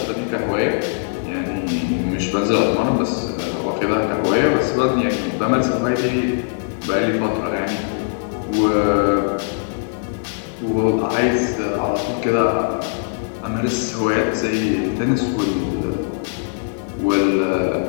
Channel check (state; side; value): silent; right; 59 dB below the other